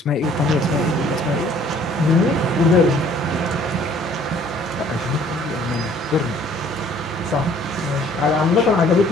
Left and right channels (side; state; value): both; normal; correlation 0.56